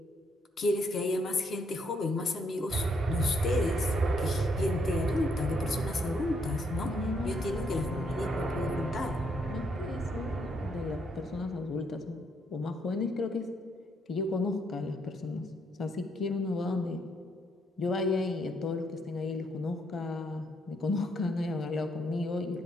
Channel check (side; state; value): both; normal; correlation 0.73